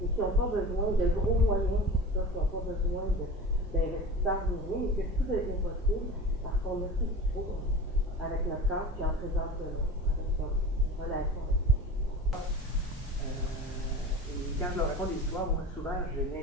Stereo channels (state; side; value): normal; both; correlation 0.34